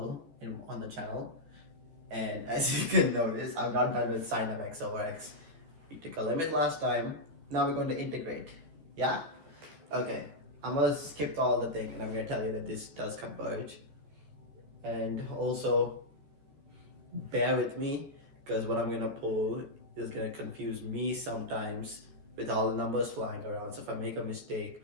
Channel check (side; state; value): left; late; 14 ms